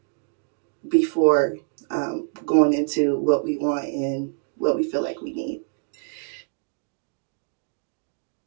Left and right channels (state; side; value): silent; left; digital silence